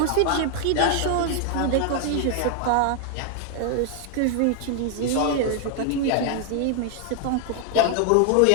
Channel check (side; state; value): both; different; correlation 0.00